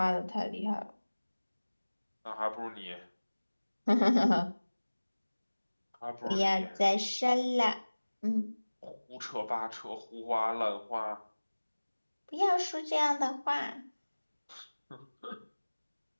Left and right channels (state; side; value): inverted; both; correlation -1.00